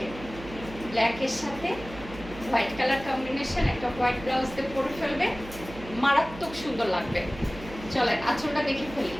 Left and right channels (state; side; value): noise; right; hum, 14 dB below the sound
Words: ব্ল্যাকের সাথে হোয়াইট কালার কম্বিনেশন, একটা হোয়াইট ব্লাউজ দিয়ে পরে ফেলবে, মারাত্মক সুন্দর লাগবে। চলেন আঁচলটা দেখে ফেলি।